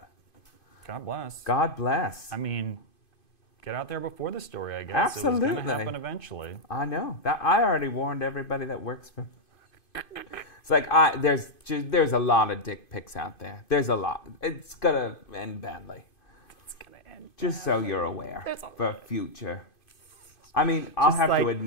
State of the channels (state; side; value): late; right; 2.5 ms